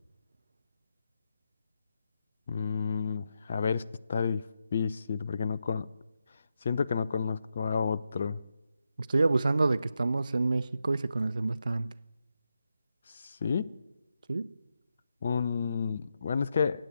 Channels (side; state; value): both; inverted; correlation -0.86